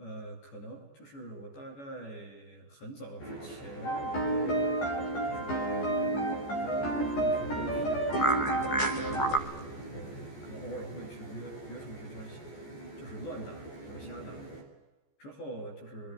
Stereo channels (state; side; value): late; right; 14 ms